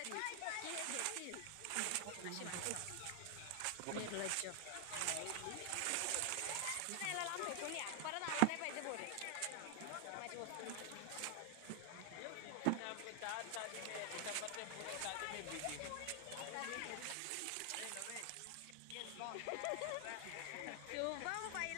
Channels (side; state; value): both; different; correlation 0.00